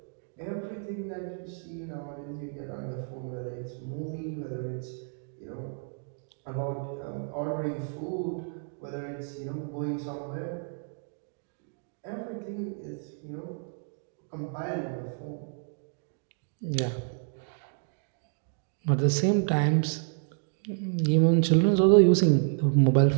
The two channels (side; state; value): left; silent; 58 dB below the other